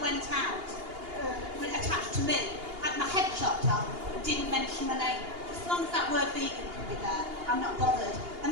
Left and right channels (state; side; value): late; left; 2.8 ms